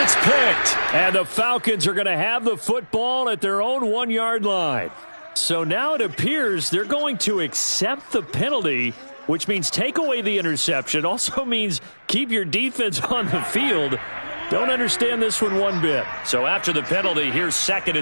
it's picked. And the Falcons are going to have the football at their own 1-yard line. So now it appears they're going to accept the penalty, which means take away the interception. Also means keep your defense on the field. Don't understand this one bit. So after the penalty, here's 2nd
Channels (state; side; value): inverted; both; correlation -1.00